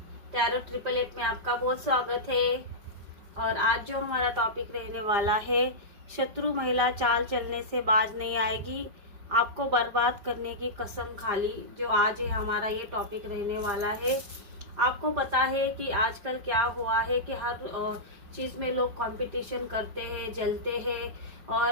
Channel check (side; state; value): left; late; 5.0 ms